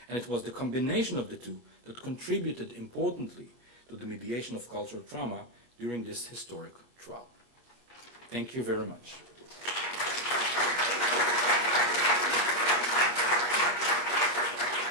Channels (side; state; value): left; late; 23 ms